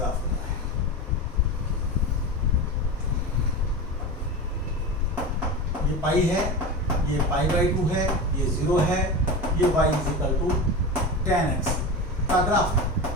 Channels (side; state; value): both; normal; correlation 0.25